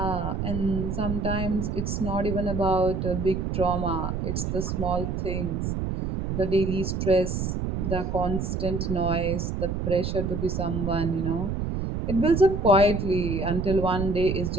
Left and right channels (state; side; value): noise; right; rumble, 2 dB below the sound